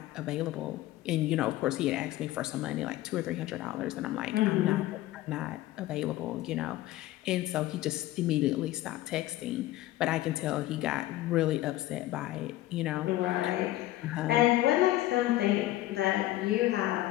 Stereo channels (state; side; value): quieter; right; 15.9 dB